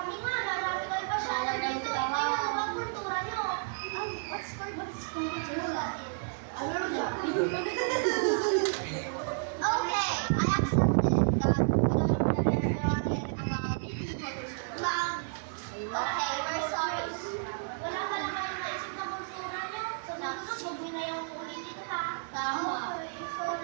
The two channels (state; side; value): silent; left; 57 dB below the other